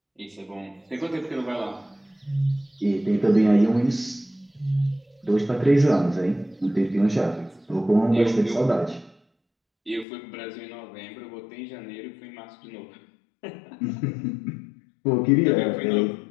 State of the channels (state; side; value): drops out; right; at 10.1 s